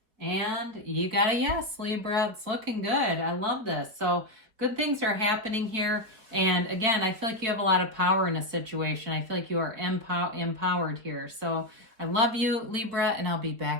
And you got a yes, Libra. It's looking good. I love this. So good things are happening here. And again, I feel like you have a lot of power in a situation. I feel like you are empowered here. So I love you, Libra, and I'll be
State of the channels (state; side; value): late; left; 4.7 ms